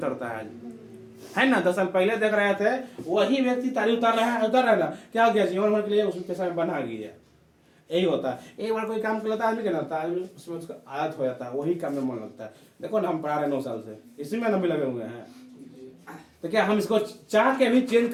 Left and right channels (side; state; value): both; identical; correlation 1.00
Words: है आज, है ना। 10 साल पहले देख रहे थे, वही व्यक्ति तारी उतार रहा है, उतार रहा है ना, क्या हो गया, जीवन भर के लिए उसमें पेशा में बना गया। यही होता है, एक बार कोई काम कर लेता है आदमी, क्या होता है, उसमें उसका आदत हो जाता है, वही काम में मन लगता है। देखो ना, हम पढ़ा रहे 9 साल से, इसी में भी लगे हुए हैं, तो क्या हम इसको चाह के भी चेंज